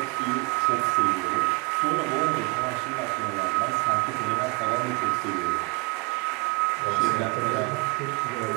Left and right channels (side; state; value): left; quieter; 24.9 dB